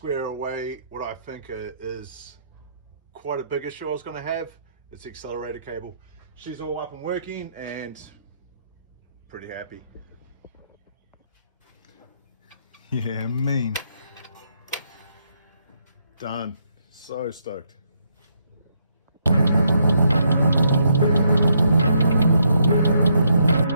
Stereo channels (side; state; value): both; inverted; correlation -0.75